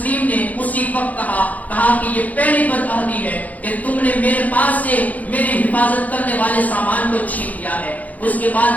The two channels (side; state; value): right; late; 0.076 ms